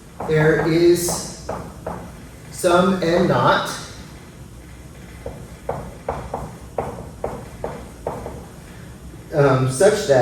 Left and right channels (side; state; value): both; identical; correlation 1.00